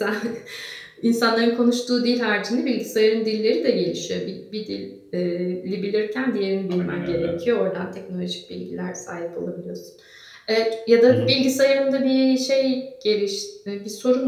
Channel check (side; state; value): both; identical; correlation 1.00